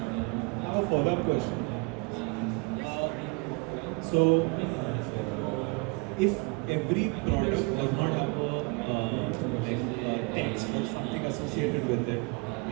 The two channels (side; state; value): left; quieter; 30.4 dB